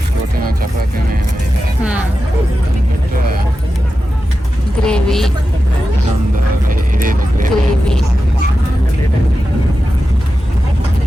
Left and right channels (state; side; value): normal; both; correlation 0.92